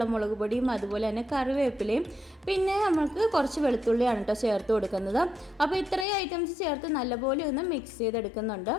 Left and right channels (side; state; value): right; drops out; at 6.1 s